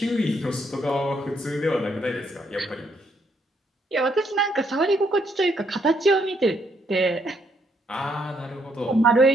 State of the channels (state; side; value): normal; both; correlation 0.73